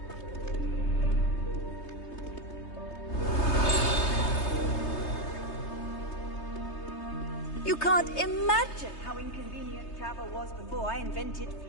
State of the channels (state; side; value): late; right; 3.3 ms